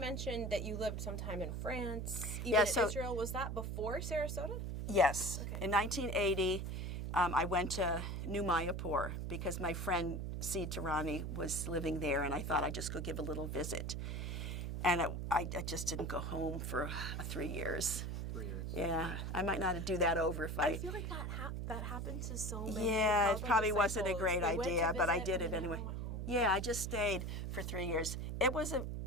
that you lived sometime in France, even in Israel. Was that before Sarasota? Yes. Okay. In 1980, I went to New Mayapur because my friend C. Tarani was living there, and I thought I'd just go give a little visit. And I just didn't go home for 3 years. 3 years. Yeah, I might not do that over if I feel like that happens to so many. Yeah, it probably wasn't a disciples. great They went to idea, but I visit did and it anyway. then went home. Yeah, I just stayed for 3 years. It was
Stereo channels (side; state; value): right; noise; hum, 3 dB below the sound